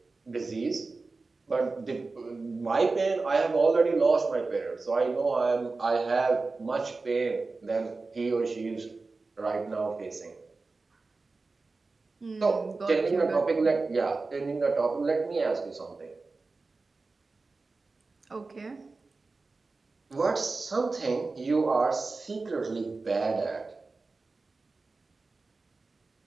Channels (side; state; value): left; quieter; 3.8 dB